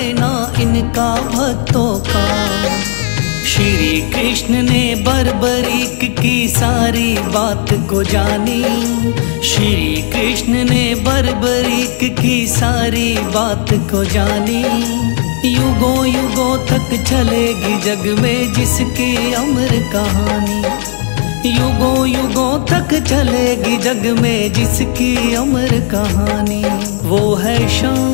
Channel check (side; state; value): right; silent; digital silence